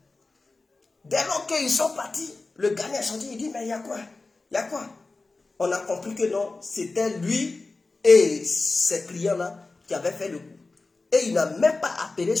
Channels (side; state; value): right; quieter; 3.5 dB